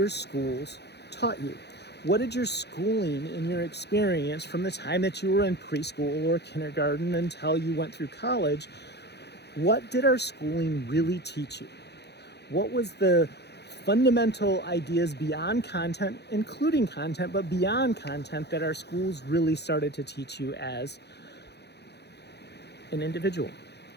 schools taught you. What did your schooling and your experience from the time that you were in preschool or kindergarten until you went through college, what did our schooling really teach you? What was the fundamental ideas beyond content, including content, but beyond content that our schools really started to teach you as an individual?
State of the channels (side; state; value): right; late; 0.49 ms